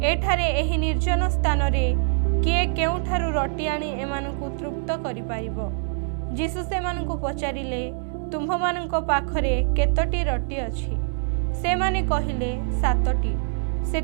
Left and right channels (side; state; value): left; silent; 62 dB below the other